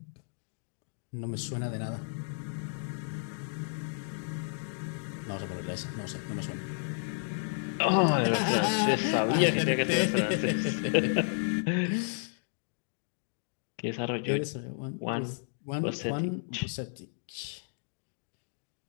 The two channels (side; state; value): right; silent; digital silence